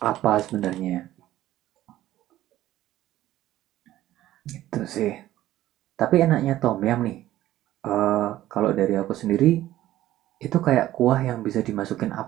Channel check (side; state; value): left; quieter; 14.3 dB